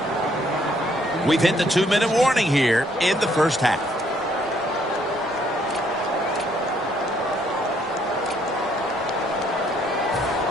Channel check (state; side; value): noise; left; rumble, 28 dB below the sound